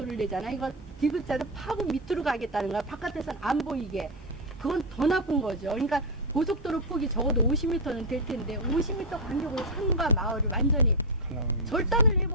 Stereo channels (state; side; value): normal; both; correlation 0.04